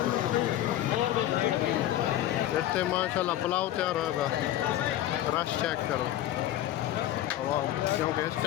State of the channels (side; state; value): right; quieter; 13.2 dB